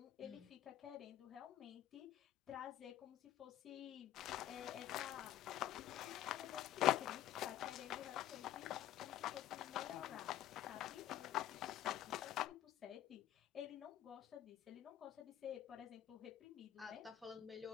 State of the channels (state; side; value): quieter; right; 12.4 dB